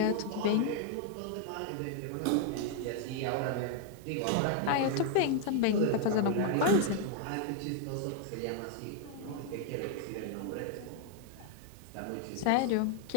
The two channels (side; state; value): both; different; correlation 0.00